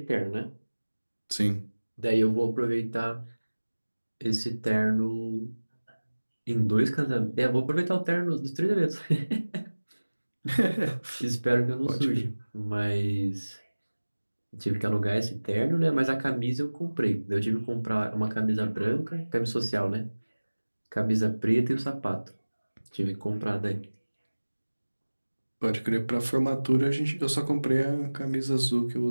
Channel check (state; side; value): inverted; both; correlation -1.00